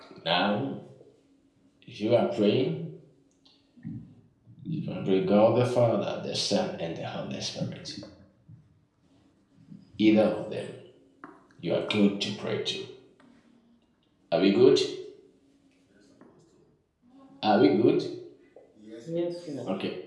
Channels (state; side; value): identical; both; correlation 1.00